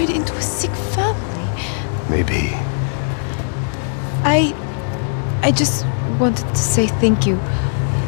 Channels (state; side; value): silent; right; digital silence